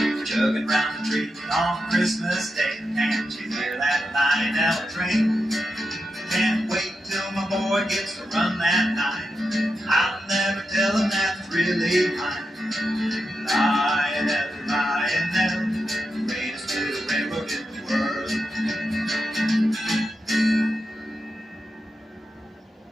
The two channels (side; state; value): both; normal; correlation 0.87